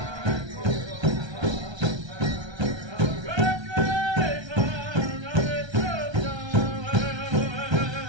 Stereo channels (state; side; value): late; left; 1.3 ms